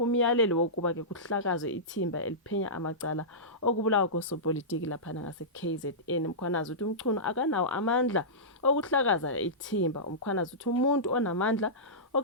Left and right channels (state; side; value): normal; both; correlation -0.18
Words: umyalelo wokuba ke kuhlakazwe ithimba eliphenya amacala okubulawa kosopolitiki laphana ngase-KZN. Mkhwanazi uthi uMchunu akanawo amandla okuhlakaza ithimba. Umkhwanazi uthi umuntu onamandla